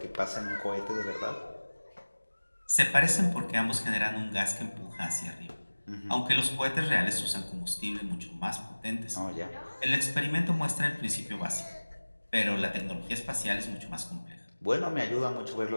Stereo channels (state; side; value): inverted; both; correlation -1.00